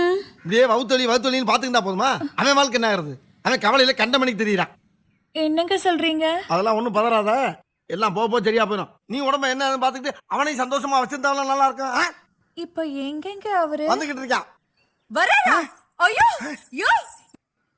இப்படியே வவுத்தொலின்னு பாத்துக்கிட்டா போதுமா? அவன் வாழ்க்கை என்ன ஆகுறது? அவன் கவலையில கண்ட மணிக்கு தெரியுறான். என்னங்க சொல்றீங்க? அதெல்லாம் ஒண்ணும் பதறாத, எல்லாம் போக சரியா போயிடும். நீ உடம்ப என்ன பாத்துக்கிட்டு அவனையும் சந்தோஷமா வச்சிருந்தாலும் நல்லா இருக்கும். இப்ப எங்கங்க அவரு வந்துகிட்டு இருக்கான். வரா? ஐயோ யோ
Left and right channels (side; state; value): both; identical; correlation 1.00